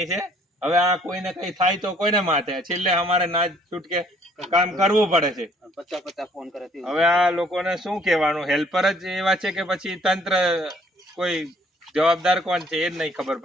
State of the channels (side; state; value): both; normal; correlation 0.61